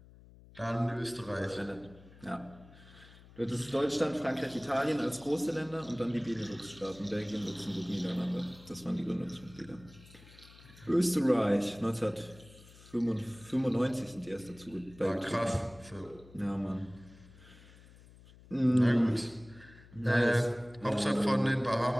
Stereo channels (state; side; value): noise; left; hum, 22 dB below the sound